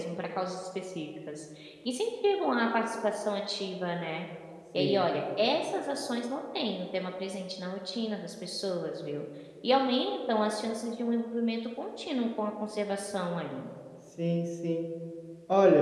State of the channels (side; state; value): both; identical; correlation 1.00